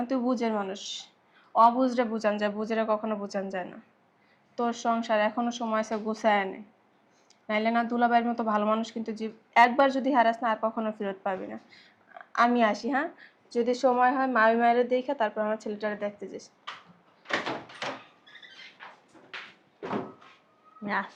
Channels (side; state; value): both; identical; correlation 1.00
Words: তুই বুঝের মানুষ। অবুঝরে বুঝান যায়, বুঝেরে কখনো বুঝান যায় না। তোর সংসার এখনো সময় আছে, গুছায় আনে, নাইলে না দুলাভাইয়ের মতো ভালো মানুষ কিন্তু একবার যদি হারাস না আর কখনো ফেরত পাবি না। আমি আসি, হ্যাঁ? যদি সময় হয় মামি মায়ের দেখে তারপর আমার ছেলেটারে দেখতে যাস। আমি